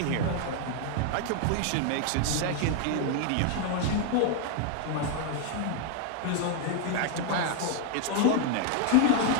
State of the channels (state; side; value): different; both; correlation 0.00